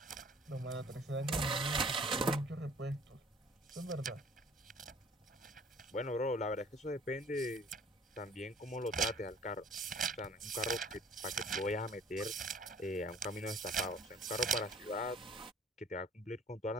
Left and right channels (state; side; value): normal; both; correlation 0.53